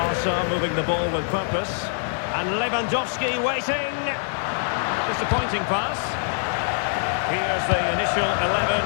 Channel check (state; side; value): silent; right; digital silence